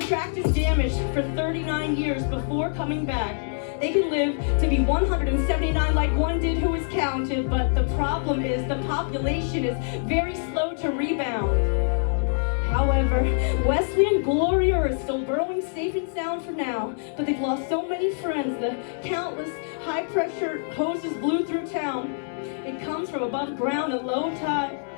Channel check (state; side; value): silent; right; 62 dB below the other